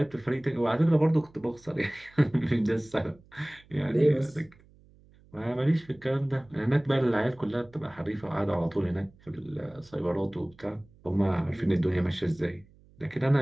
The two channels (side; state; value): right; noise; hum, 27 dB below the sound